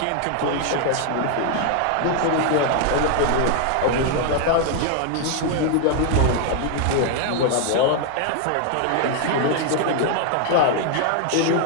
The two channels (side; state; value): both; different; correlation 0.00